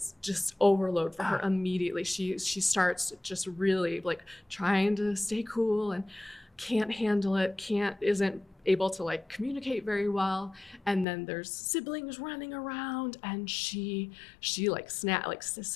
just overload for her immediately. She starts just really like trying to stay cool and can't handle it, isn't able to like communicate very well. And then there's siblings running around, and she like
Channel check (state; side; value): drops out; right; at 11.1 s